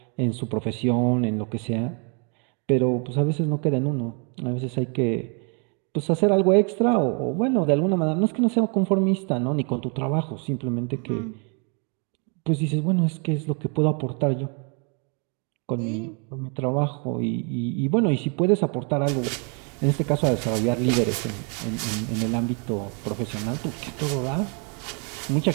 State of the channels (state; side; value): quieter; left; 36.8 dB